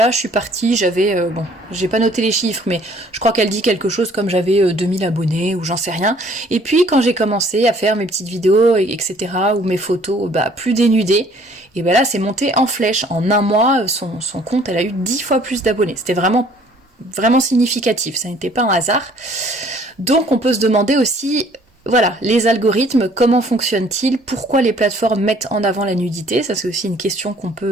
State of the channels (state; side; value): normal; both; correlation 0.58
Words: je suis partie, j'avais, bon, j'ai pas noté les chiffres, mais je crois qu'elle dit quelque chose comme j'avais 2000 abonnés, ou j'en sais rien. Et puis quand j'ai commencé à faire mes petites vidéos, etc., ou mes photos, bah plus dénudées, et ben là c'est monté en flèche. En un mois, son compte, elle a eu 10 fois plus d'abonnés. C'était vraiment significatif, ça n'était pas un hasard. Donc on peut se demander aussi, voilà, les algorithmes, comment fonctionnent-ils, pourquoi les plateformes mettent en avant la nudité, ça c'est aussi une question qu'on